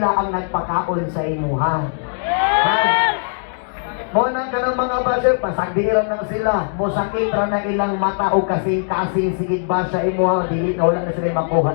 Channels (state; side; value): silent; right; 66 dB below the other